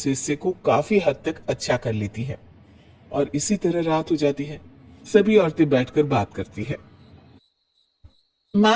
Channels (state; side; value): identical; both; correlation 1.00